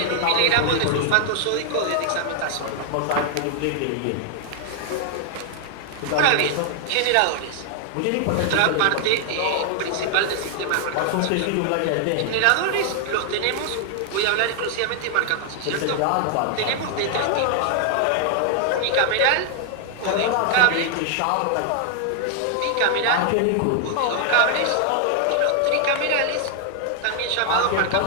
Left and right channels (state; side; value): different; both; correlation 0.00